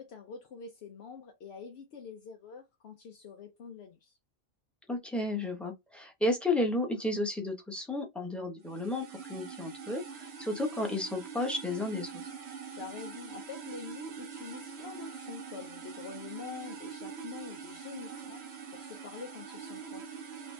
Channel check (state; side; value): normal; both; correlation 0.35